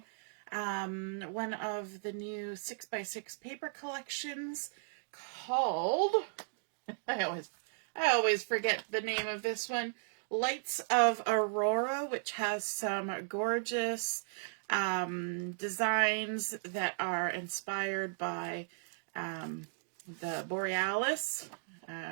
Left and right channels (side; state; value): left; silent; digital silence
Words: one of the new 6x6 paper collections called, I always forget the name of this one, Lights of Aurora, which has some gorgeous designs that are inspired by the Borealis,